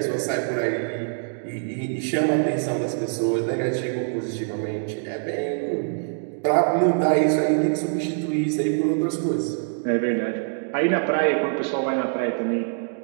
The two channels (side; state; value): left; silent; digital silence